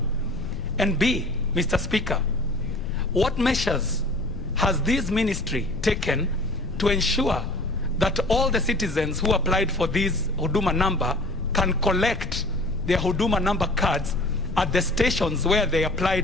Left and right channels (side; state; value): left; noise; rumble, 8 dB below the sound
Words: And B, Mr. Speaker, what measures has this ministry taken to ensure that all the citizens who applied for this Huduma number can collect their Huduma number cards at the stations where they